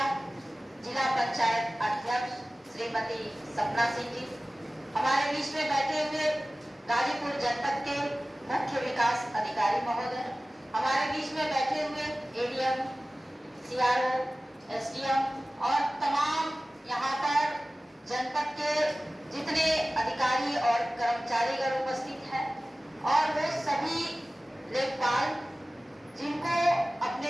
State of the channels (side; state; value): both; normal; correlation 0.97